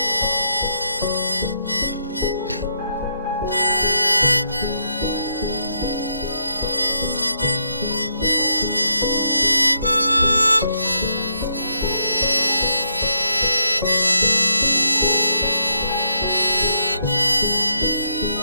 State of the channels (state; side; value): inverted; both; correlation -0.77